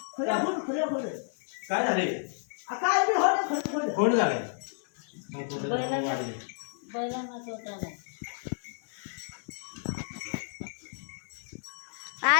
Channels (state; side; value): silent; right; digital silence